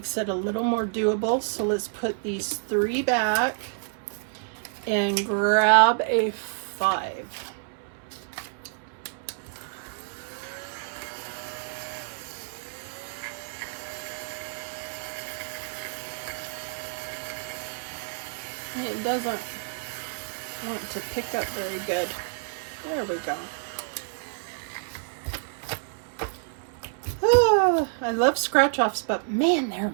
it a little more doable. So let's put these 3 back and grab a 5. It doesn't want to pick up very good. There we go. I love scratch offs, but man, they're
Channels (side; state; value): left; silent; 59 dB below the other